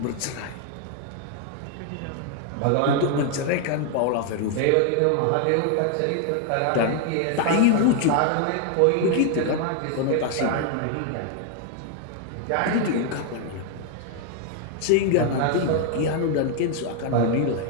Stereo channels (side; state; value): both; different; correlation 0.00